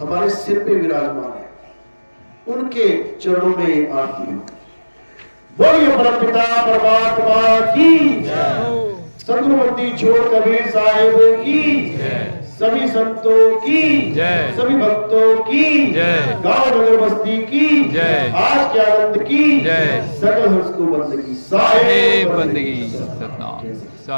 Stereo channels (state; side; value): inverted; both; correlation -1.00